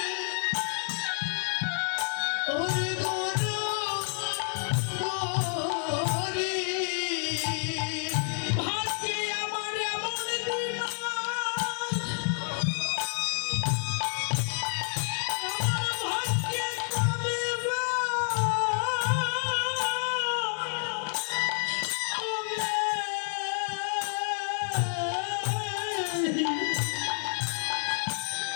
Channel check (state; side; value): silent; right; digital silence